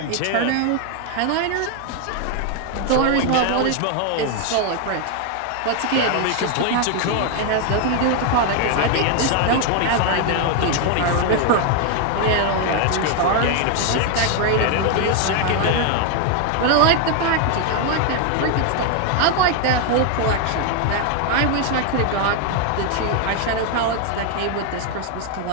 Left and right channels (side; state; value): both; different; correlation 0.00